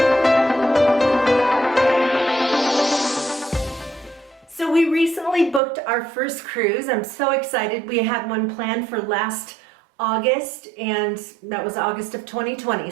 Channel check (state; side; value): drops out; left; at 5.6 s